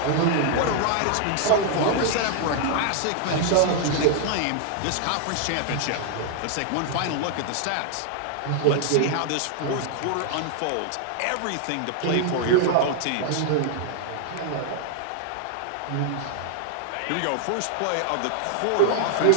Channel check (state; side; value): different; both; correlation 0.00